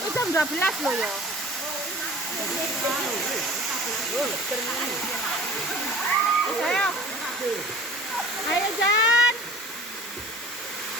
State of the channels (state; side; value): normal; both; correlation 0.43